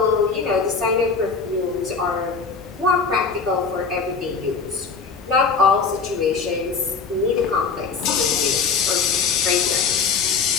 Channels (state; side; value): quieter; right; 5.1 dB